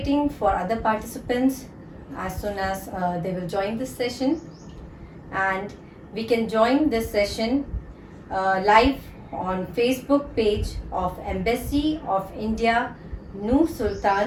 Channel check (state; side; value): identical; both; correlation 1.00